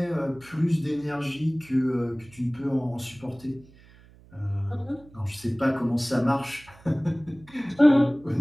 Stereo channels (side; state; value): right; noise; hum, 25 dB below the sound